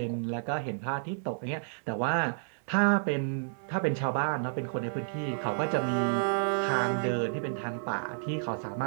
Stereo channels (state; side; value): silent; left; digital silence